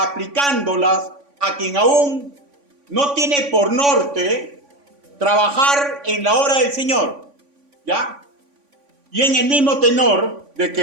a quien aún no tiene por norte trabajar en la obra del Señor. ¿Ya? Y en el mismo tenor de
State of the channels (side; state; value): left; late; 3.5 ms